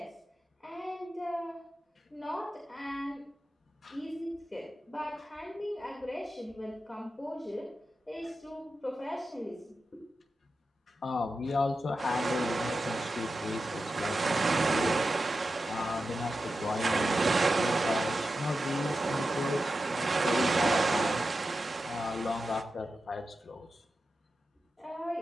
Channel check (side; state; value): both; normal; correlation 0.91